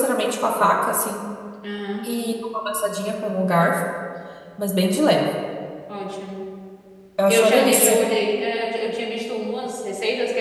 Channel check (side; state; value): both; identical; correlation 1.00